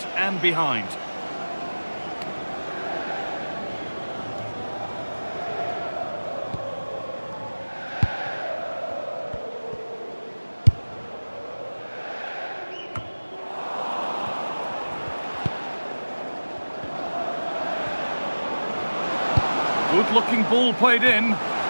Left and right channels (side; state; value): both; inverted; correlation -1.00